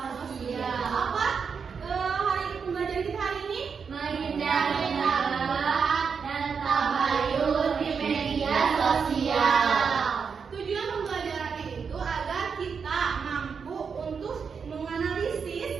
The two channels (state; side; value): quieter; left; 6.0 dB